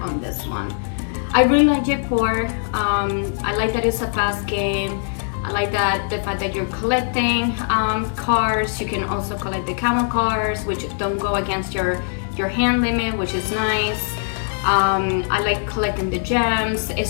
on this one. I really like J4. I like that it's a fast game. I like that the fact that you're collecting cards. You can also collect the camel cards, which don't go against your hand limit, which is nice. I like collecting the gems.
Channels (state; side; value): silent; right; 60 dB below the other